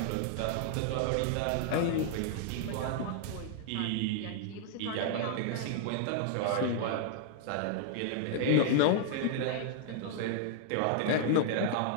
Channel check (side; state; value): both; different; correlation -0.01